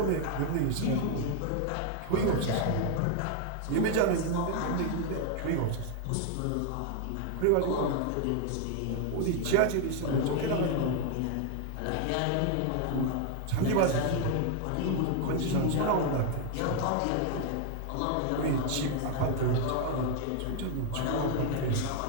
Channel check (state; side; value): different; both; correlation 0.00